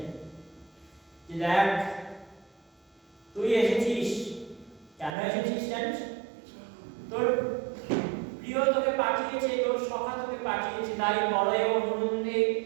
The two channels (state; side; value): drops out; left; at 5.2 s